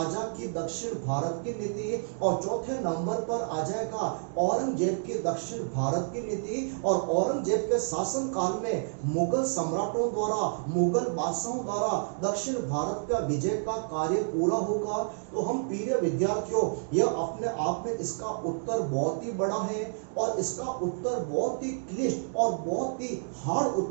की दक्षिण भारत की नीति, और चौथे नंबर पर आ जाएगा औरंगजेब की दक्षिण भारत की नीति। और औरंगजेब के शासन काल में मुगल सम्राटों द्वारा, मुगल बादशाहों द्वारा दक्षिण भारत का विजय का कार्य पूरा होगा। तो हम प्रिय विद्यार्थियों, यह अपने आप में इसका उत्तर बहुत ही बड़ा है और इसका उत्तर बहुत ही क्लिष्ट और बहुत ही हार्ड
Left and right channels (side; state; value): left; silent; digital silence